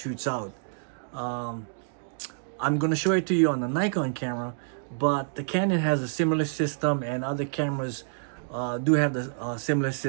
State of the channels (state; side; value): silent; left; digital silence